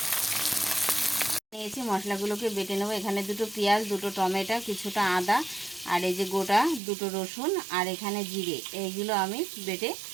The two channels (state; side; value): drops out; left; at 6.8 s